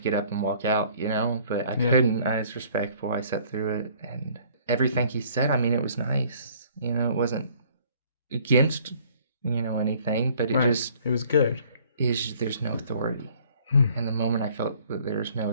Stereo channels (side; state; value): both; inverted; correlation -0.57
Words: get up and walk out, but I couldn't. I was respectful. I sat through it, and everything he said, it was nice. It wasn't against, anything, but it was good. There's no authority. And the moment I felt that there's no